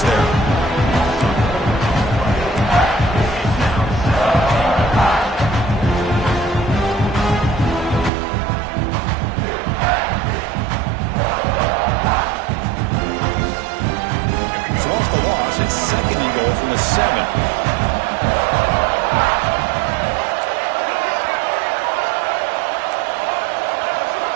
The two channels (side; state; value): left; drops out; at 8.1 s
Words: there. It's 2nd and goal from the 7.